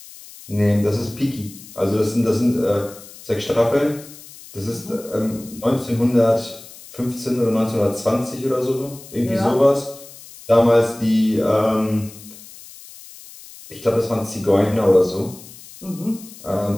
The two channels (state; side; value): noise; left; hiss, 18 dB below the sound